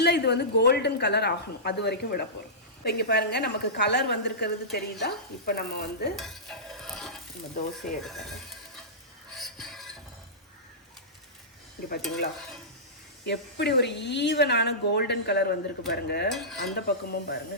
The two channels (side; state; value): both; normal; correlation -0.19